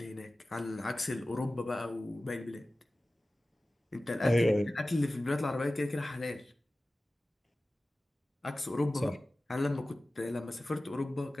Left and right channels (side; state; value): both; normal; correlation 0.96